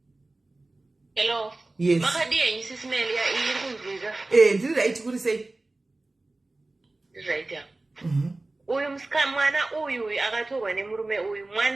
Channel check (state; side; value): quieter; left; 3.0 dB